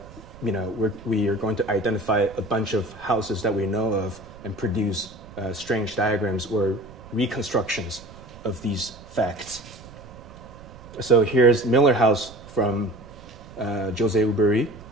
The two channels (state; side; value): noise; right; rumble, 19 dB below the sound